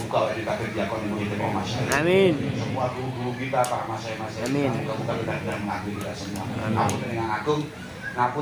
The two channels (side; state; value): both; identical; correlation 1.00